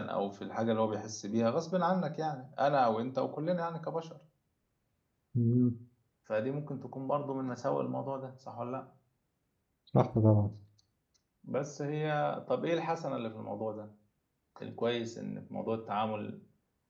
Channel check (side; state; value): both; identical; correlation 1.00